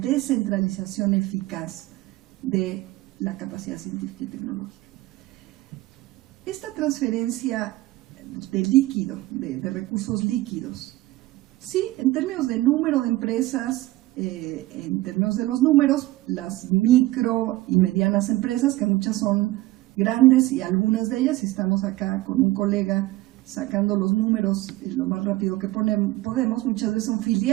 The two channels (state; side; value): quieter; left; 17.9 dB